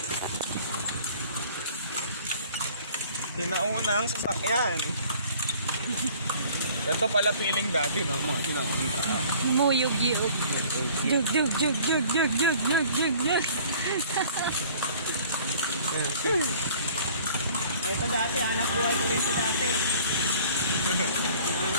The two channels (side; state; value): both; inverted; correlation -0.51